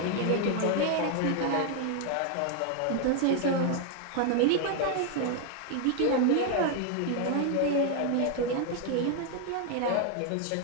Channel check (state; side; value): different; both; correlation 0.01